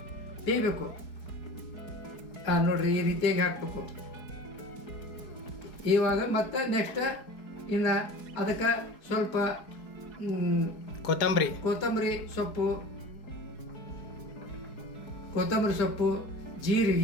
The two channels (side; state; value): right; late; 4.7 ms